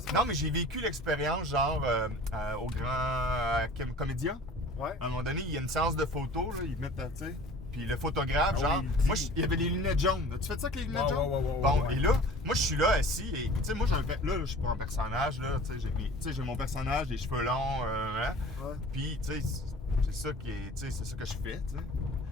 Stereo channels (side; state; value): both; normal; correlation 0.44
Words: Non, mais j'ai vécu l'expérience, genre, au grand comédien. Ouais. À un moment donné, il y a une séance de photos, là, ils mettent, tu sais, Puis le photographe, Ah genre, oui, moi, il y avait les lunettes jaunes. Tu fais ça avec les lunettes Ouais, jaunes? ouais, Bon, ouais. et là, moi, je suis là, assis, et tu sais, moi, là, je suis pas un personnage, là, tu sais, j'ai mon personnage, les cheveux longs, hein. Ouais. Puis, tu sais, c'est ça qui est, tu sais, c'est ça que je fais, tu sais.